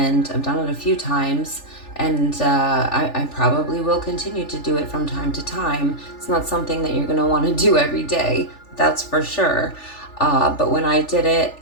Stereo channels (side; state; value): right; late; 3.4 ms